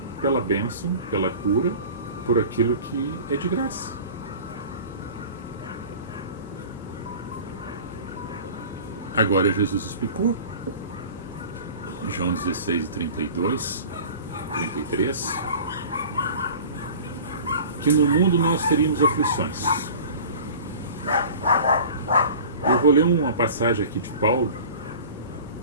pela bênção, pela cura, por aquilo que é de graça. Agora Jesus explicou, João 16, 32, 33, que no mundo nós teríamos aflições. Eu vou ler uma passagem aqui de Paulo,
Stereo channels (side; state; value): both; inverted; correlation -0.41